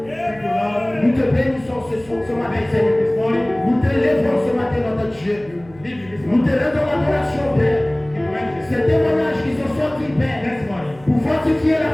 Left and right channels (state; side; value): noise; right; hum, 24 dB below the sound